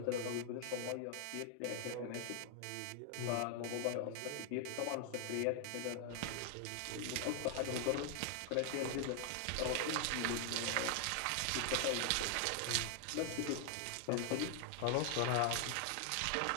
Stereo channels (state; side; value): different; both; correlation 0.00